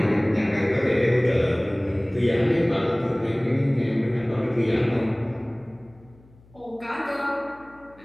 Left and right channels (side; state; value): left; noise; hum, 27 dB below the sound